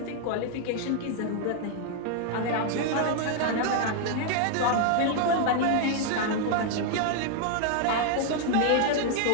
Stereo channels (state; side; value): different; both; correlation 0.00